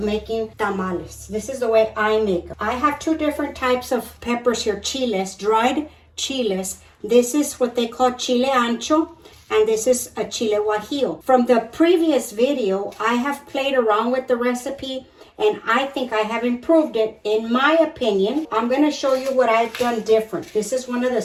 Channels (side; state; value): both; identical; correlation 1.00